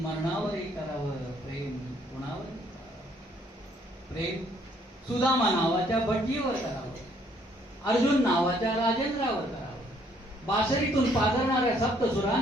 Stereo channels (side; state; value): both; normal; correlation 0.65